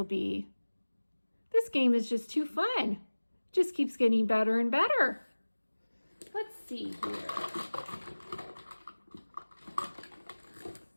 be? This game is just too fun. Just keeps getting better and better. Let's see here.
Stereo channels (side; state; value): both; inverted; correlation -1.00